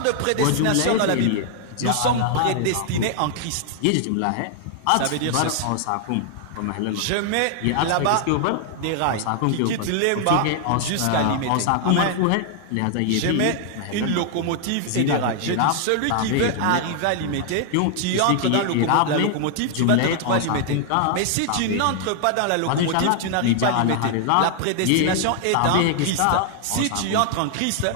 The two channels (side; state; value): both; different; correlation 0.00